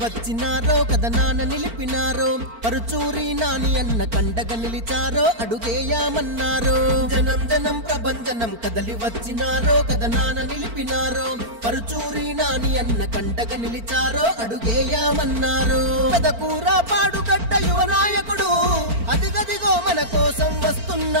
వచ్చినారో కథనాన నిలిపినారో పరుచూరి నాని అన్న కండగా నిలిచారో అడుగేయామన్నారో జనం జనం ప్రభంజనం కదలి వచ్చినారో కథనాన నిలిపినారో పరుచూరి నాని అన్న కండగా నిలిచారో అడుగేయామన్నారో పెదకూర పాడుగడ్డ యువ నాయకుడు అదిగదిగో మన కోసం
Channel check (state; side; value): late; left; 4.4 ms